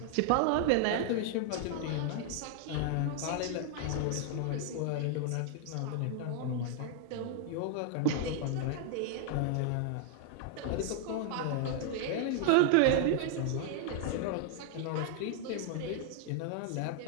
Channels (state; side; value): different; both; correlation 0.00